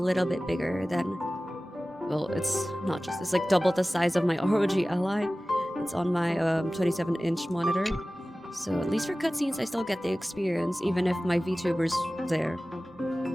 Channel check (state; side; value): normal; both; correlation 0.97